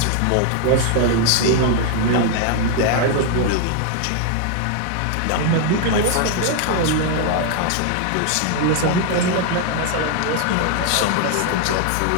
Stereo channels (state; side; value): different; both; correlation 0.00